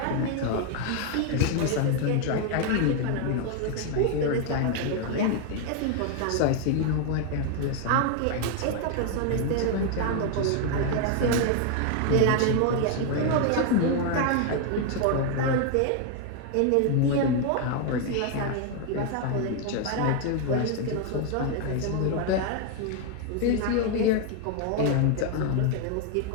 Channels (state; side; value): different; both; correlation 0.01